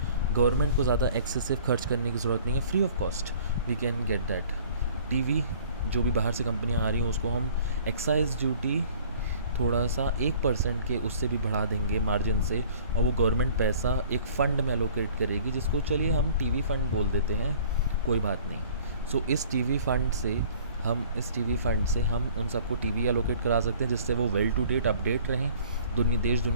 government को ज़्यादा एक्सेसिव खर्च करने की ज़रूरत नहीं है, free of cost we can get that. TV जो भी बाहर से कंपनियां आ रही हैं उसको हम एक्साइज ड्यूटी थोड़ा सा 1% के उससे भी बढ़ा देंगे मार्जिन से, और वो गवर्नमेंट पैसा एक फ़ंड में एलोकेट करेगी, जिसको चलिए हम टीवी फ़ंड बोल देते हैं, कोई बात नहीं। सो इस टीवी फ़ंड से हम उन सबको टीवी एलोकेट करा सकते हैं, जिससे वो वेल टू डेट अपडेट रहें, देश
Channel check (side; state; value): both; inverted; correlation -0.51